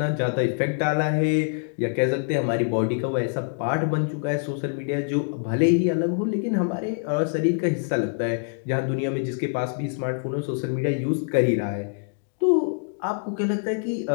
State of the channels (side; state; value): right; silent; digital silence